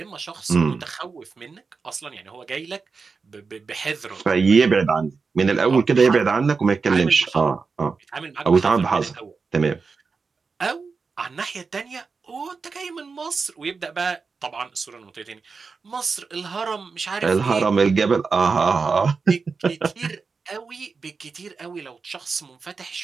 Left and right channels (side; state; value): left; quieter; 4.8 dB